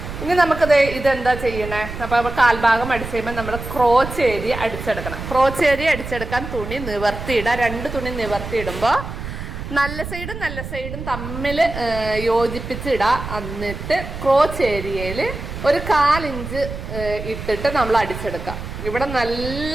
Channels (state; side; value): noise; right; rumble, 8 dB below the sound